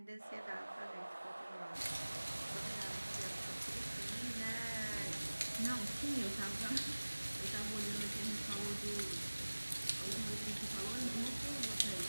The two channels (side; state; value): both; inverted; correlation -1.00